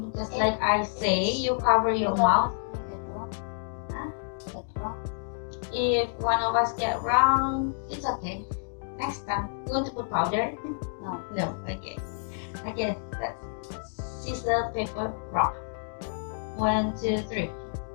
just like I say. You cover your mouth. If one of us get wrong, it's okay. Next time, you want to put powder? No. No. Okay. Okay. Let's scissors, paper, rock. 1, 2, 3.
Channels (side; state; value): right; silent; digital silence